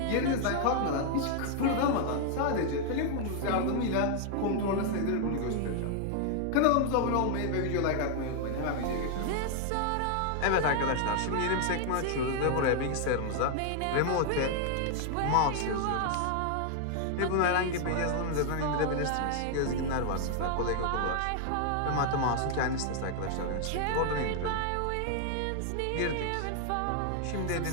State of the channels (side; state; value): both; different; correlation 0.00